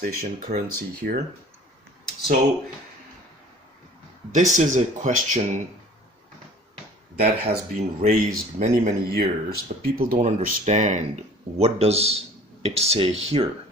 currency here. So this is a question that has been raised many years, but people don't understand what does it say here.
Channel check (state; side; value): normal; both; correlation 0.48